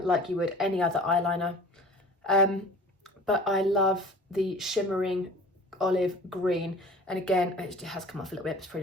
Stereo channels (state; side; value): normal; both; correlation 0.43